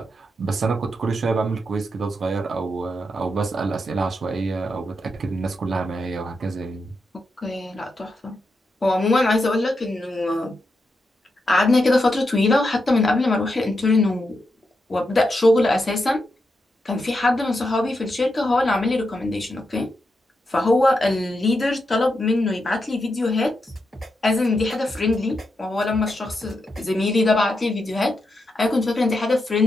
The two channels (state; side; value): normal; both; correlation 0.85